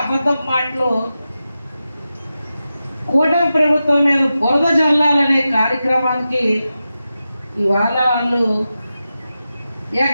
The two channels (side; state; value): both; inverted; correlation -0.92